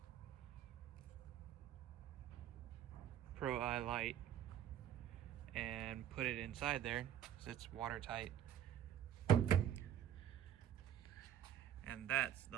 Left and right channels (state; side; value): quieter; left; 10.5 dB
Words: Pro Eye light and put it inside there so it's watertight. And that's